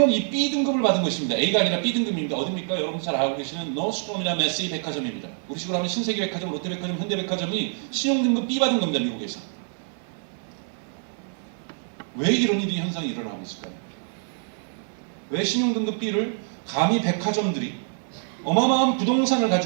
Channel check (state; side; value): silent; left; 61 dB below the other